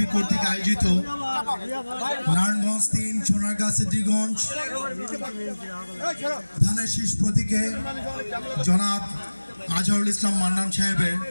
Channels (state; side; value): inverted; both; correlation -1.00